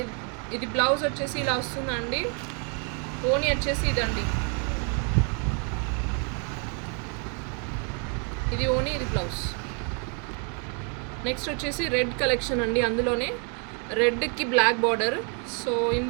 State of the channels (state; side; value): quieter; left; 39.5 dB